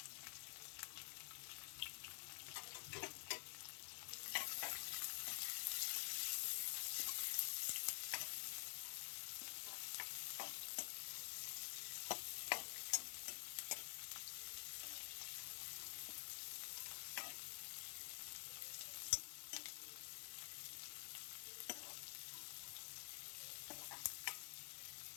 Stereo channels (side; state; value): right; silent; digital silence